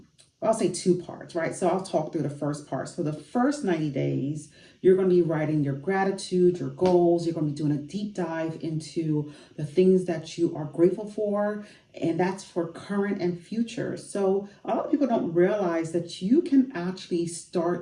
say two parts, right? So I'll talk through the first part. So the first 90 days, you're going to be writing your gratitude, your goals. You're going to be doing a deep dive into the things that you are grateful for, and that's for current and future. So a lot of people don't realize that you can actually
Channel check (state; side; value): identical; both; correlation 1.00